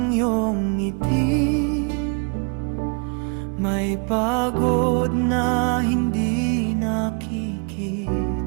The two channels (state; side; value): quieter; left; 37.5 dB